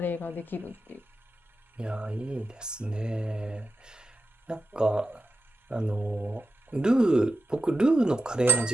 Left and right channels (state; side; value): normal; both; correlation 0.92